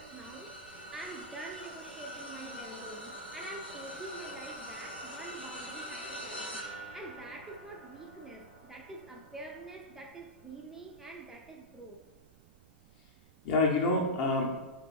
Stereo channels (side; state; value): right; noise; rumble, 23 dB below the sound